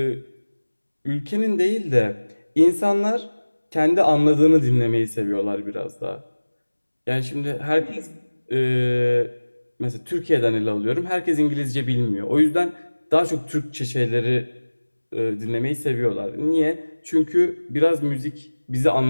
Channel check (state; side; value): inverted; both; correlation -1.00